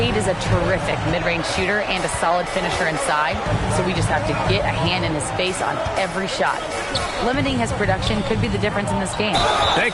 is a terrific mid-range shooter and a solid finisher inside, so we just have to get a hand in his face on every shot. Limiting his production could be the difference in this game.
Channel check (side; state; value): both; identical; correlation 1.00